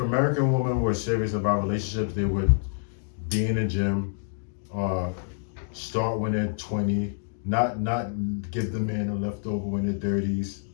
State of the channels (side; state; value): right; silent; digital silence